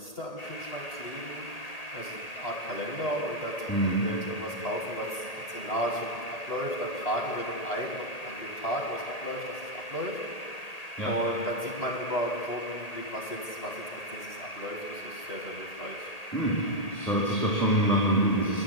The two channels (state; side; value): late; right; 1.8 ms